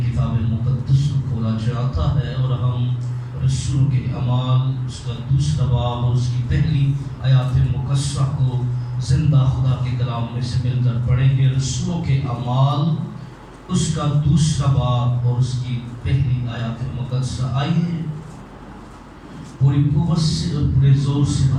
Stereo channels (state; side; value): identical; both; correlation 1.00